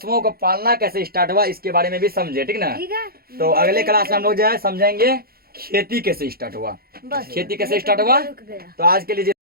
को पालना कैसे स्टार्ट हुआ इसके बारे में भी समझे, ठीक ना। तो अगले क्लास में हम लोग जो है समझेंगे खेती कैसे स्टार्ट हुआ, खेती कैसे स्टार्ट हुआ। तो आज के लिए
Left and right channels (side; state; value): left; late; 0.44 ms